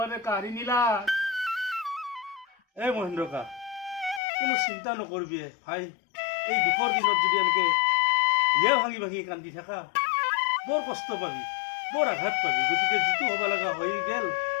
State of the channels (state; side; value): drops out; right; at 4.2 s